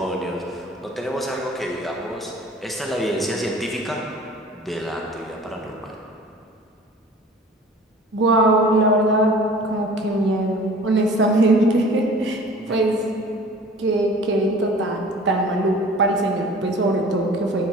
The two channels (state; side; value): normal; both; correlation 0.46